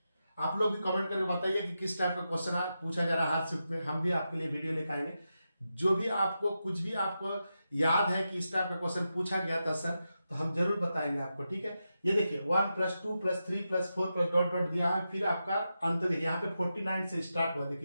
आप लोग भी कमेंट करके बताइए कि किस टाइप का क्वेश्चन पूछा जा रहा है हर शिफ्ट में, हम भी आपके लिए वीडियो लेकर आएंगे। जो भी आपको कुछ भी आपको याद है कि इस टाइप का क्वेश्चन पूछा गया था सर, तो हम जरूर बताएंगे आपको। ठीक है, ये देखिए 1 + 2 + 3 + 4 + डॉट डॉट दिया है, फिर आपका अंत देखिए यहाँ पे 49 से स्टार्ट हुआ,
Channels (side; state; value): both; inverted; correlation -0.89